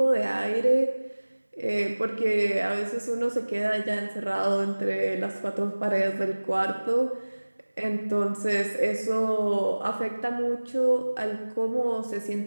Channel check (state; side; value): inverted; both; correlation -1.00